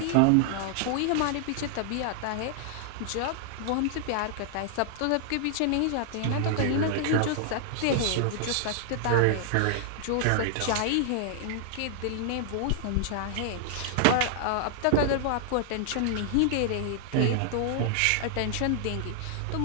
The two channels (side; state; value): both; different; correlation 0.00